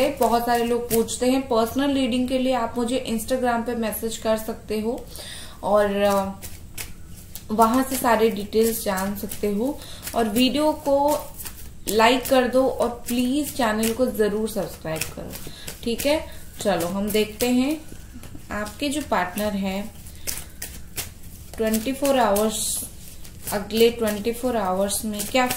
बहुत सारे लोग पूछते हैं पर्सनल रीडिंग के लिए आप मुझे इंस्टाग्राम पे मैसेज कर सकते हो और वहां से सारे डिटेल्स जान सकते हो। और वीडियो को लाइक कर दो और प्लीज चैनल को जरूर सब्सक्राइब करो, ठीक है। चलो हम देखते हैं आपके जो पार्टनर है 24 आवर्स, अगले 24 आवर्स में क्या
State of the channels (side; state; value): both; identical; correlation 1.00